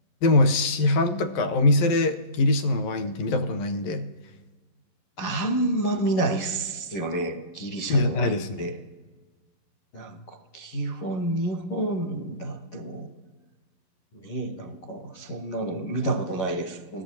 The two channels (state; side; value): late; right; 11 ms